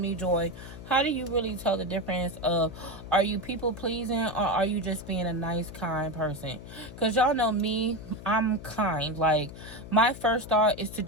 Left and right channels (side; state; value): left; noise; hum, 14 dB below the sound